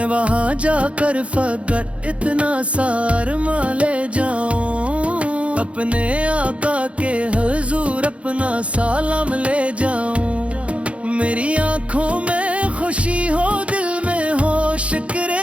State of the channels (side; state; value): left; late; 0.062 ms